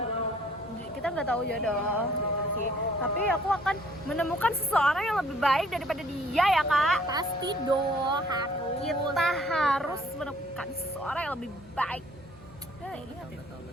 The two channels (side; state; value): both; normal; correlation 0.59